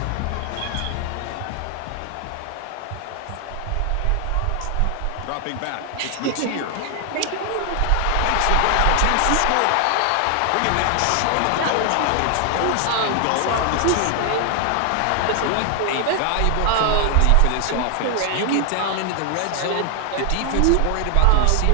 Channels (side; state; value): both; different; correlation 0.00